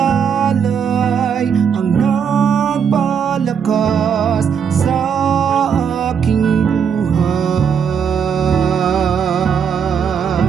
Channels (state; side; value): quieter; left; 7.2 dB